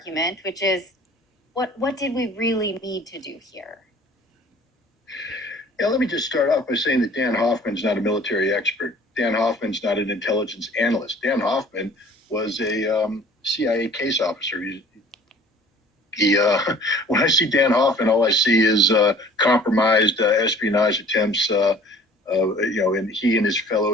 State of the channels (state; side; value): normal; both; correlation 0.50